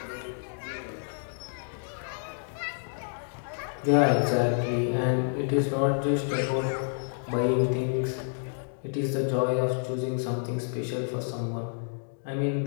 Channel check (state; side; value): silent; right; digital silence